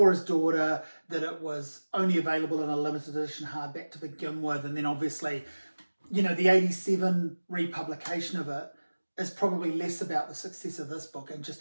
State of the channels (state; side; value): inverted; both; correlation -1.00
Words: his daughter, that it was only available in a limited edition hardback to begin with, and then obviously, you know, the 87 republication of it is probably less about the success of this book and